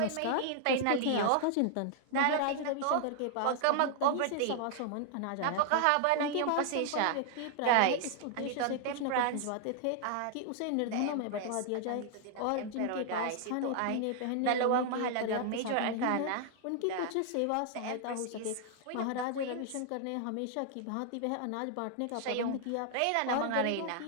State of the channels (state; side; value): different; both; correlation 0.00